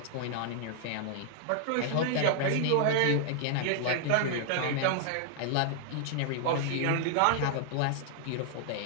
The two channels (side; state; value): both; different; correlation -0.01